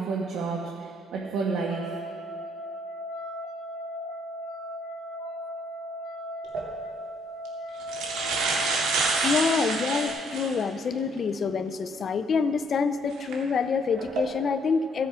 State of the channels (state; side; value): normal; both; correlation 0.67